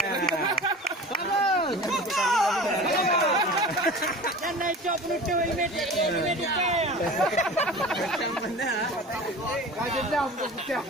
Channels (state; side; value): normal; both; correlation 0.37